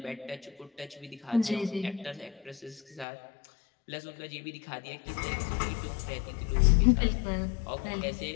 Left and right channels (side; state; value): right; drops out; at 3.1 s